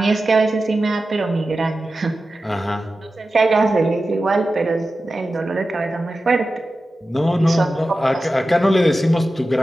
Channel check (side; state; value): both; normal; correlation 0.93